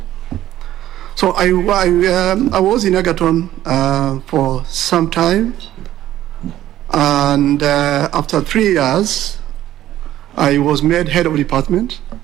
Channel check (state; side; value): quieter; left; 13.2 dB